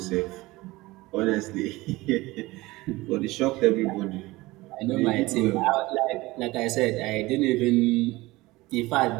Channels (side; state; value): left; quieter; 20.1 dB